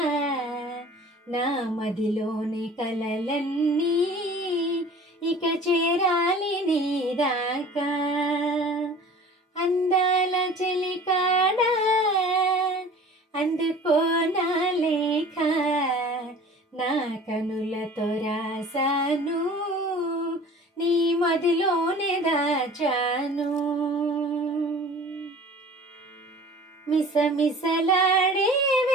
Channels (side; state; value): both; normal; correlation 0.44